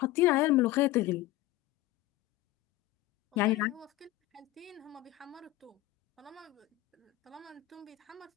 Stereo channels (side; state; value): right; quieter; 17.0 dB